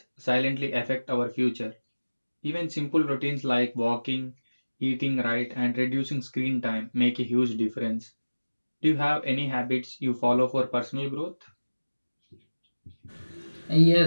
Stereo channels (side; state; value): both; inverted; correlation -1.00